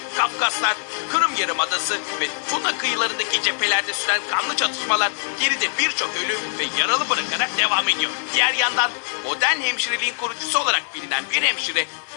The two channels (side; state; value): right; silent; digital silence